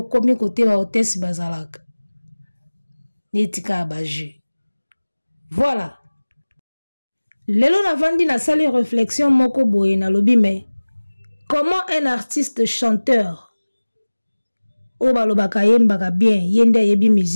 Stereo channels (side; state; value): both; inverted; correlation -1.00